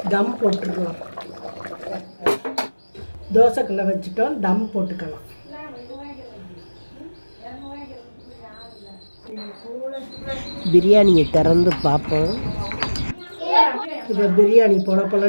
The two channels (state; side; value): inverted; both; correlation -1.00